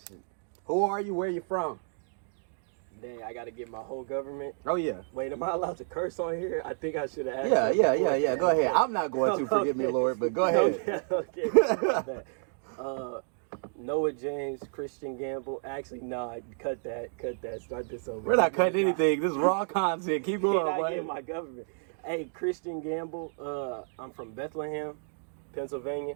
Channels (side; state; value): left; silent; digital silence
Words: Who are you? Where are you from? Dang, I got to get my whole government. Oh, yeah. Wait, am I allowed to curse on here? I think I should have asked. Yeah. Go ahead. I'm not going to, forgive me, Lord, but go ahead. Okay. Noah James, Christian Gamble. Actually, nah, cut that. Start this over. We're not cutting anything. This is raw content. Keep going, boy. I get my government. Hey, Christian Gamble. I'm from Bethlehem, Pennsylvania.